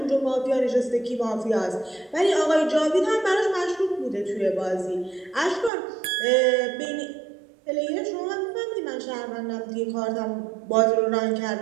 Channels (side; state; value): left; drops out; at 5.7 s